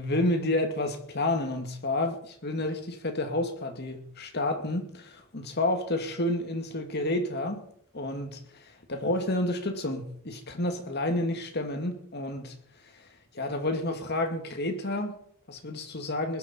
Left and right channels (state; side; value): normal; both; correlation 0.11